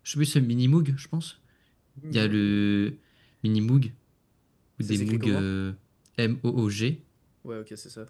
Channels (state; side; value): identical; both; correlation 1.00